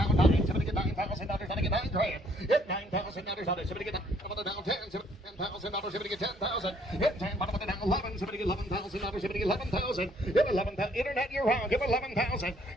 Somebody get $9,000. Somebody get $9,000. Hit $9,000 on it. Somebody get $10,000. Somebody get $10,000. Hit $10,000 down 11. Somebody $11,000. Somebody get $11,000. Give $11,000. Internet year round. Give $11,000.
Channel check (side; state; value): both; normal; correlation 0.64